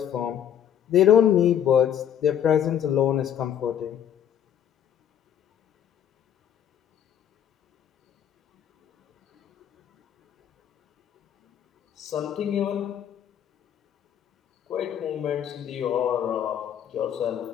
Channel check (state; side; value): quieter; right; 9.6 dB